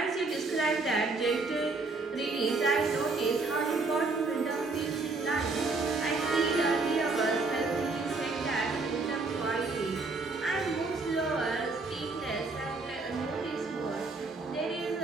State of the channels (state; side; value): quieter; left; 3.7 dB